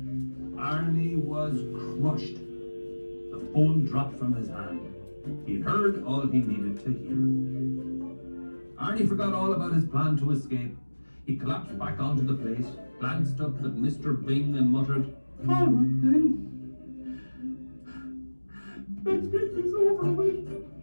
was crushed. The phone dropped from his hand. He'd heard all he needed to hear. Arnie forgot all about his plan to escape. He collapsed back onto the plate, glanced up at Mr. Bing and muttered, All right then. Let's get this over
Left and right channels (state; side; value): inverted; both; correlation -1.00